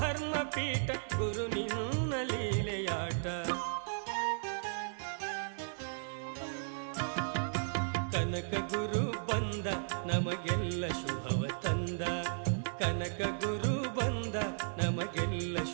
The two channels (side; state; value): left; silent; digital silence